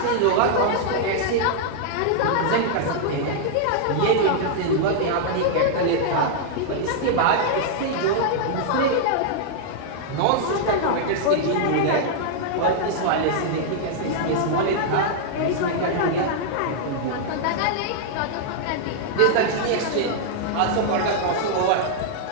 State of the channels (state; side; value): different; both; correlation -0.01